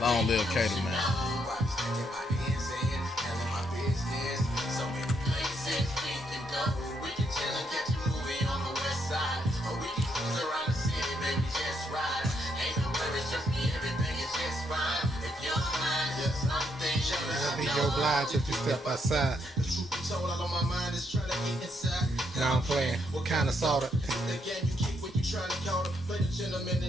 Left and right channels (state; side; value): normal; both; correlation 0.76